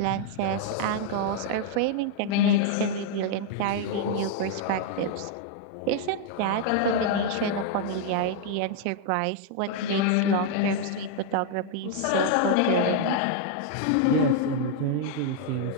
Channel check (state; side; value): different; both; correlation 0.00